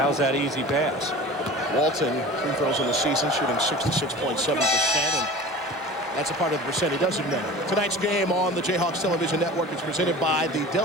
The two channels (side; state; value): both; normal; correlation 0.38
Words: that easy pass. Walton, free throws in the season, shooting 66.7%, and that's a part of the percent he doesn't know. Tonight's game on the Jayhawks Television Network is presented by the